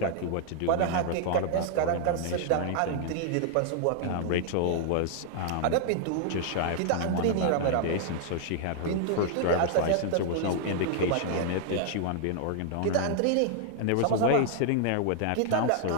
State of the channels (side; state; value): both; different; correlation -0.01